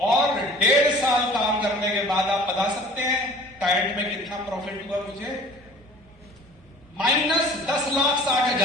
और 1.5 साल काम करने के बाद आप बता सकते हैं टाइट में कितना प्रॉफिट हुआ मुझे?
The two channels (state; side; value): normal; both; correlation 0.47